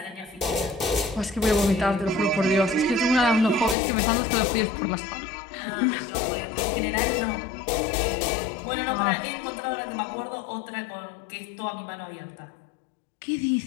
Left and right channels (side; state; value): right; drops out; at 3.8 s